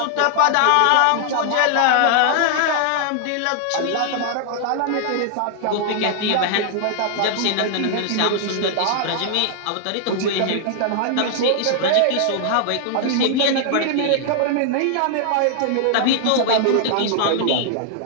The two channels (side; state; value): both; different; correlation -0.01